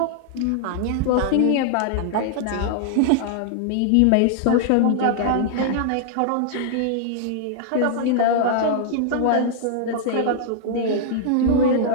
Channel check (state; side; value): different; both; correlation -0.01